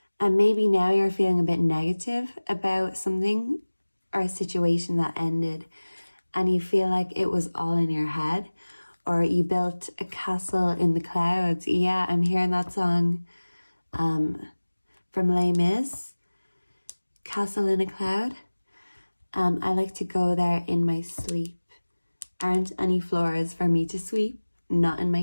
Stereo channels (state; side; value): inverted; both; correlation -1.00